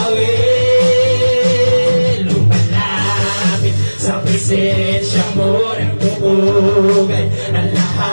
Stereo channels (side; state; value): both; inverted; correlation -1.00